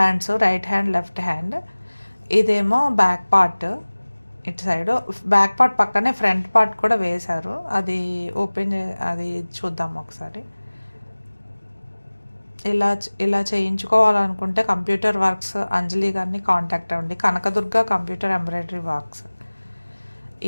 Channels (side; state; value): both; inverted; correlation -1.00